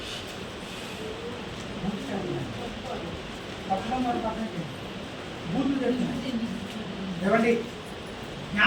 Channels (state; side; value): identical; both; correlation 1.00